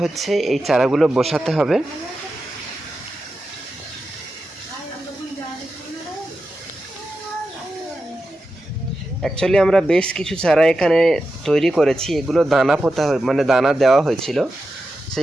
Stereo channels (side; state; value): both; normal; correlation 0.90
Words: হচ্ছে, এই চারাগুলো বসাতে হবে। অ্যাকচুয়ালি আমরা বেশ কিছু চারা এখানে তৈরি করেছি। এগুলো দানা পোতা মানে দানা দেওয়া হয়েছিল,